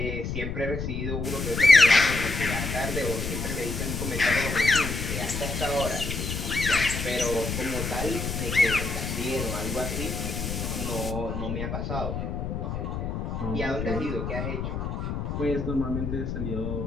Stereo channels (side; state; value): left; noise; rumble, 3 dB below the sound